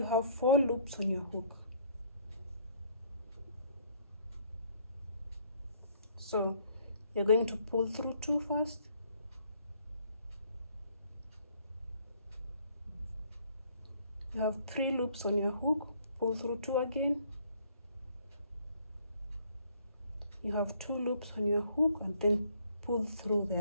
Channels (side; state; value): both; inverted; correlation -0.62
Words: have 4 loops on your hook. So you're going to pull through 2 first, you have 3 loops on your hook, pull through 2 again, you have 2 loops on your hook, and then pull through